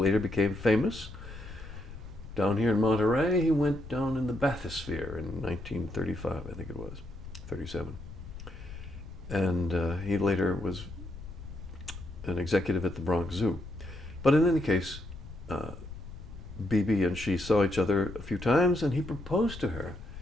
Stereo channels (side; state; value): left; noise; rumble, 12 dB below the sound